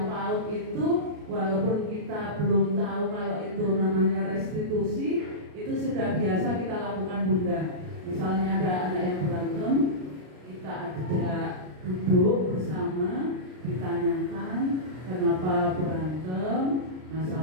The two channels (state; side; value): late; left; 33 ms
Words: PAUD itu, walaupun kita belum tahu kalau itu namanya restitusi, itu sudah biasa kita lakukan bunda. Misalnya ada anak yang berantem, kita ajak duduk bersama, ditanyakan kenapa berantem,